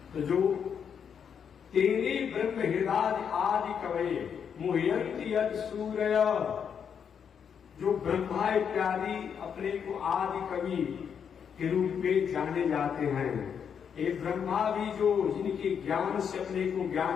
तो जो तेरे ब्रह्म हृदय आदि कवि मुह्यंति यद सूर्य, जो ब्रह्मा इत्यादि अपने को आदि कवि के रूप में जाने जाते हैं। ये ब्रह्मा भी जो जिनके ज्ञान से अपने को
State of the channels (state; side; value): quieter; right; 7.4 dB